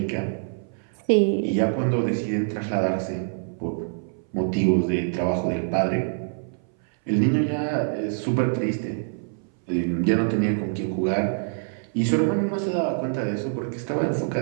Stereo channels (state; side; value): silent; left; 60 dB below the other